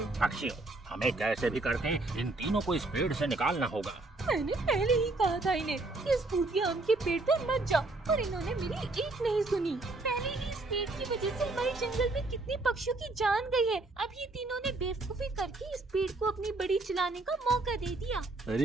पक्षियों, हमें कैसे भी करके इन तीनों को इस पेड़ से निकालना होगा। मैंने पहले ही कहा था इन्हें कि इस भूतिया आम के पेड़ पर मत जाओ, और इन्होंने मेरी एक नहीं सुनी। पहले ही इस पेड़ की वजह से हमारे जंगल में कितने पक्षियों की जान गई है। अब ये तीनों ने बेवकूफी करके इस पेड़ को अपनी बड़ी चलाने का मौका दे दिया।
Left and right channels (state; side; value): quieter; left; 3.1 dB